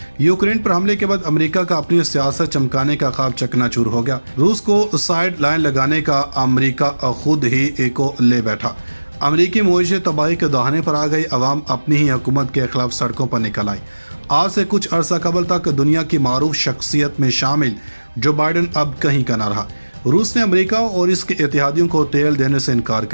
यूक्रेन पर हमले के बाद अमेरिका का अपनी सियासत चमकाने का ख्वाब चकनाचूर हो गया। रूस को साइड लाइन लगाने का अमेरिका खुद ही को ले बैठा। अमेरिकी मईशत तबाही के दहाने पर आ गई। अवाम अपनी ही हुकूमत के खिलाफ सड़कों पर निकल आई। आज से कुछ अरसा कबल तक दुनिया की मारूफ शख्सियत में शामिल जो बाइडन अब कहीं का न रहा। रूस ने अमेरिका और इसके इत्तेहादियों को तेल देने से इनकार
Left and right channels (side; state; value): both; inverted; correlation -1.00